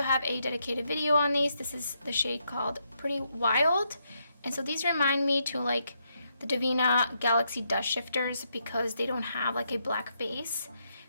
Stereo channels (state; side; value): inverted; both; correlation -0.79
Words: a dedicated video on these. This is the shade called Pretty Wild. And so these remind me to like the Divina Galaxy Dust Shifters because they don't have like a black base.